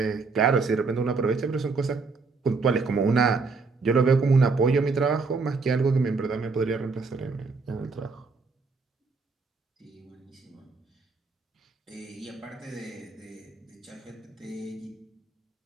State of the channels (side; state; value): left; quieter; 4.3 dB